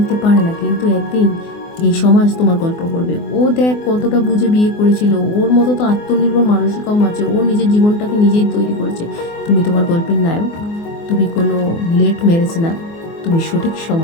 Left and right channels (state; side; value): late; right; 24 ms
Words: পারে না, কিন্তু একদিন এই সমাজ তোমার গল্প করবে। ও দেখ কতটা বুঝে বিয়ে করেছিল, ওর মতো তো আত্মনির্ভর মানুষই কম আছে, ও নিজের জীবনটাকে নিজেই তৈরি করেছে। তুমি তোমার গল্পের নায়ক। তুমি কোনো লেট ম্যারেজ না, তুমি সঠিক